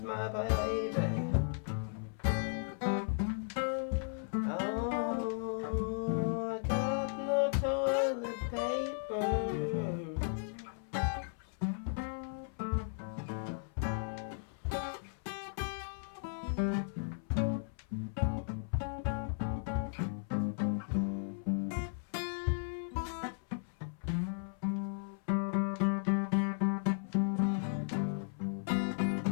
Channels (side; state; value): right; silent; 54 dB below the other